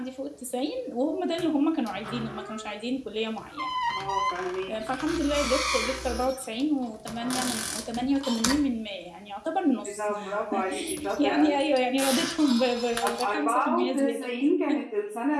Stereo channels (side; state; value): both; identical; correlation 1.00